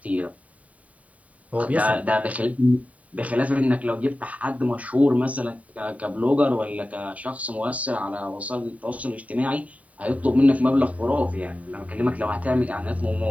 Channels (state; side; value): late; left; 0.069 ms